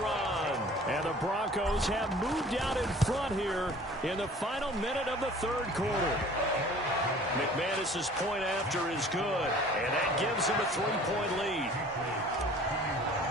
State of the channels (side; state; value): both; normal; correlation 0.48